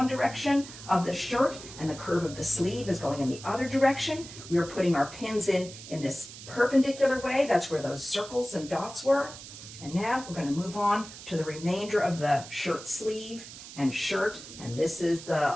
direction of the shirt and the curve of the sleeve is going in the other direction, we are putting our pins in this perpendicular way. That's where those circles and dots were. And now we're going to move on to the remainder of the shirt sleeve and shirt, and this is the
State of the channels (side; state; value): right; noise; hiss, 14 dB below the sound